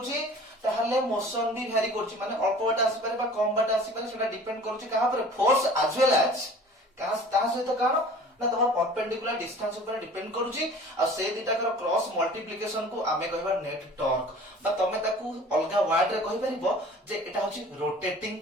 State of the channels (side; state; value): both; normal; correlation 0.45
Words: ताहले मोशन भी भ्यारी करूची माने अल्प बाट आसी पारे बा कम बाट आसी पारे सेटा डिपेंड करूची कहा पर फोर्स एज वेल एज कहा ता सहित कान ना तमर परपेंडिकुलर डिस्टेंस ऊपर डिपेंड करूची आ से दिटा कर क्रॉस मल्टीप्लिकेशन को आमे कहबा नेट टॉर्क बा तमे ताकू अलगा वर्ड रे कहि परिबो जे एटा होची रोटेटिंग